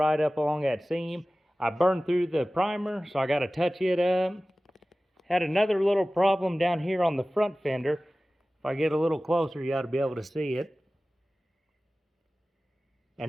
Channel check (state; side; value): normal; both; correlation 0.97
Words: up along that seam. I burned through the primer, so I got to touch it up. Had another little problem down here on the front fender. If I get a little closer, you ought to be able to see it.